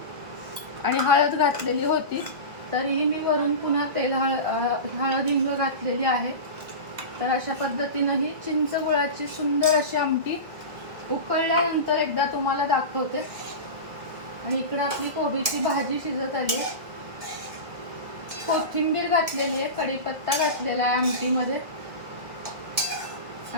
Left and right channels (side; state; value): left; late; 1.8 ms